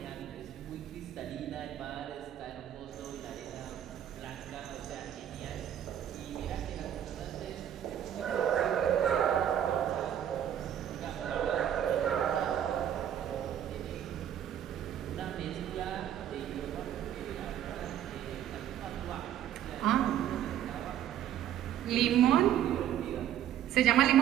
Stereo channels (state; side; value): quieter; left; 10.6 dB